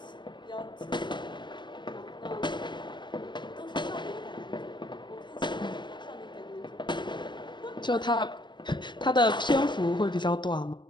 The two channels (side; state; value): right; late; 0.22 ms